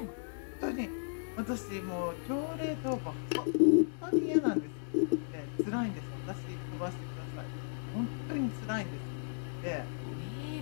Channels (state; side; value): silent; right; digital silence